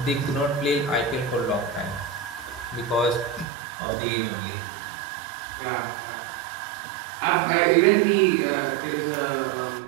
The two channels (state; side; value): drops out; left; at 3.5 s